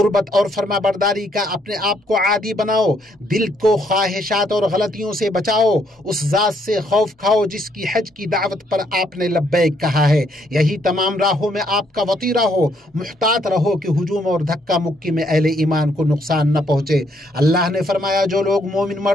اور فرما برداری کا اپنے آپ کو عادی بناؤ، دل کو خواہشات اور غلطیوں سے بچاؤ، اس ذات سے خوف کھاؤ جس کی حج کی دعوت پر آپ نے لبیک کہا ہے۔ یہی تمام راہوں میں آپ کا وطیرہ ہو، محتاط رہو کہ ہجوم اور دھکا مکی میں اہل ایمان کو نقصان نہ پہنچے۔ اللہ نے فرمایا جو لوگ مومن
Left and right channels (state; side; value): normal; both; correlation 0.70